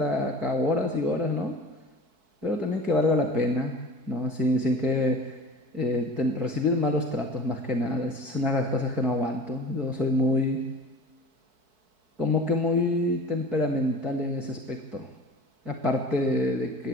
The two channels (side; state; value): left; late; 4.6 ms